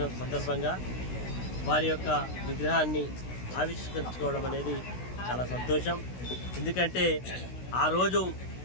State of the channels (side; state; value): right; late; 16 ms